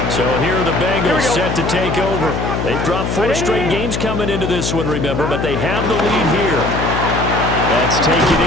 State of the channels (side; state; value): left; noise; hum, 2 dB below the sound